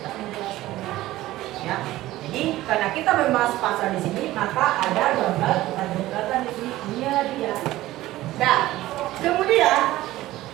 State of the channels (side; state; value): left; quieter; 16.2 dB